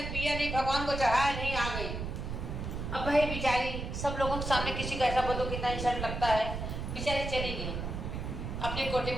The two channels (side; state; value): right; noise; rumble, 4 dB below the sound